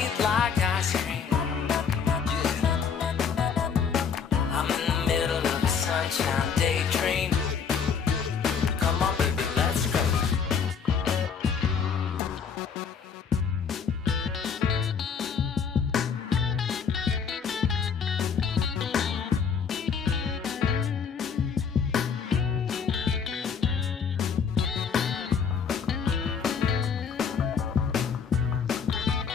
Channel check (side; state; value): right; quieter; 6.5 dB